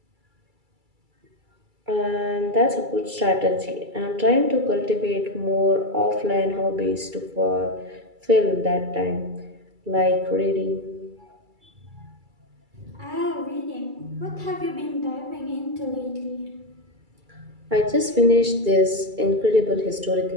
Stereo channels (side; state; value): left; late; 2.3 ms